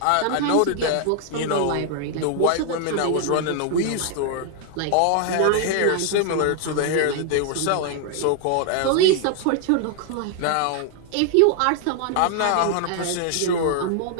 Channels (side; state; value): both; different; correlation 0.00